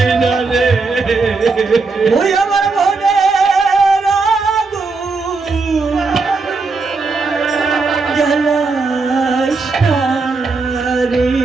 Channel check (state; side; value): quieter; left; 4.1 dB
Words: না রে, ওই আমার মনের আগুন জ্বালাস না রে,